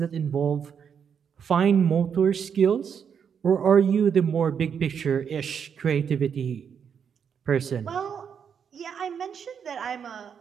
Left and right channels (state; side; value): quieter; left; 7.3 dB